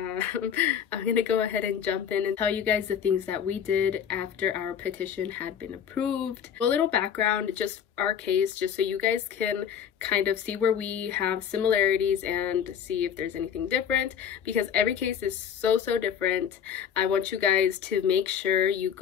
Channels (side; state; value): right; quieter; 8.3 dB